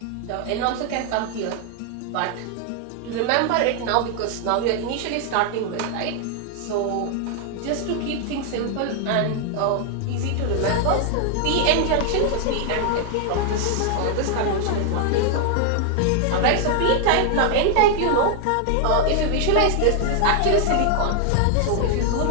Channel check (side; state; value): both; different; correlation 0.00